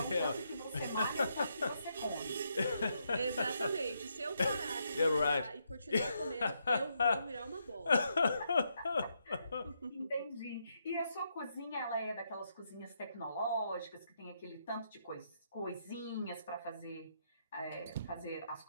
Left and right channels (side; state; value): both; inverted; correlation -0.78